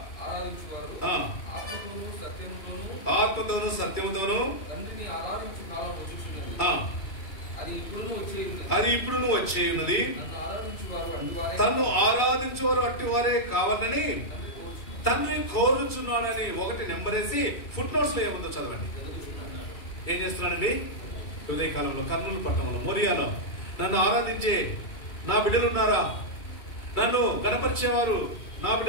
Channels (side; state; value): right; late; 2.3 ms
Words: ఆత్మతోను సత్యముతోను అది ఇప్పుడు వచ్చే ఉన్నది. తను ఆరాధించువారు అట్టి వారే కావాలని తండ్రి కోరుచున్నాడని 1 నెంబరేసి ఫుట్ నోట్స్ లో ఏముందో చదవండి. ఏం చేస్తున్నాడండి? ఉదయకాలంలో కర్నూలు పట్టణంలో మోరియాలో నన్ను ఆరాధించే నా బిడ్డలున్నారా? నన్ను గణపరిచేవారు నా